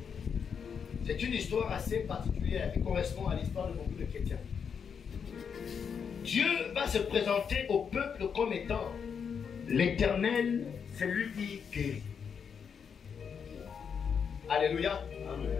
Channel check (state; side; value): quieter; right; 6.8 dB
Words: C'est une histoire assez particulière qui correspond à l'histoire de beaucoup de chrétiens. Dieu va se présenter au peuple comme étant l'Éternel, celui qui guérit. Alléluia. Amen.